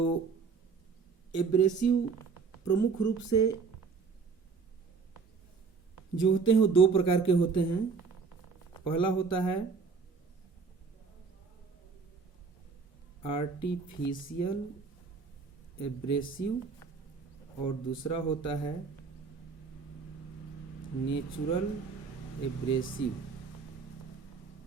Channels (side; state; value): left; quieter; 5.1 dB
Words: एब्रेसिव प्रमुख रूप से जो होते हैं वो दो प्रकार के होते हैं। पहला होता है आर्टिफिशियल एब्रेसिव और दूसरा होता है नेचुरल एब्रेसिव।